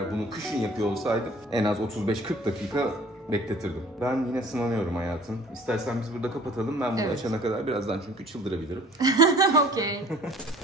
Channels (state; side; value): normal; both; correlation 0.51